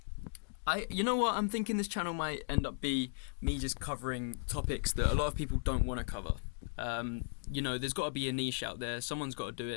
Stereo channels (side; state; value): right; silent; digital silence